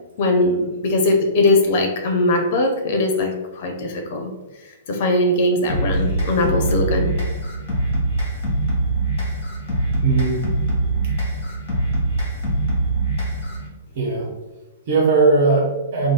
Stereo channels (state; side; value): inverted; both; correlation -0.43